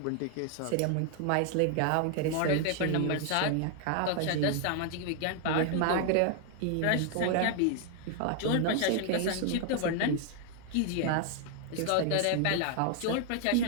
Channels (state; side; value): different; both; correlation 0.00